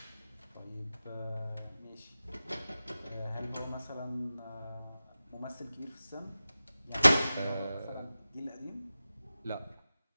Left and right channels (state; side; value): inverted; both; correlation -0.95